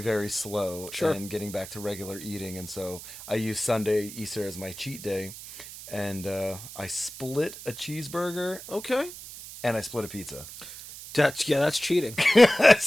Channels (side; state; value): right; noise; hiss, 13 dB below the sound